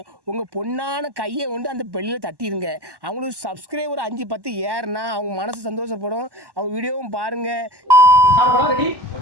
உங்கள் பொண்ணான கையை கொண்டு அந்த பெல்லில் தட்டிடுங்க. அவங்களுக்கு சப்ஸ்கிரைபர் 5-10 ஏறுனா அவங்க மனசு சந்தோஷப்படும். அவங்க வீடியோவும் பாருங்கள். சாப்பிடலாம். Ready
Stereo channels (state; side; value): late; left; 1.1 ms